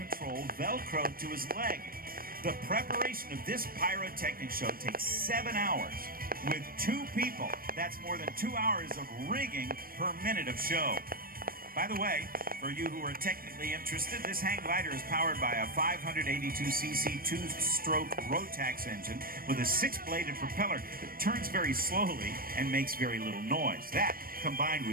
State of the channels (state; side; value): late; left; 0.42 ms